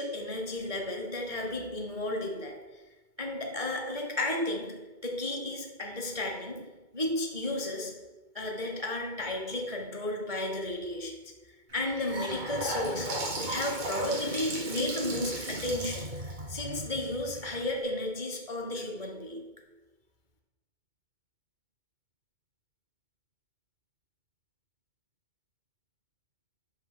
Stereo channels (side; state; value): left; late; 2.2 ms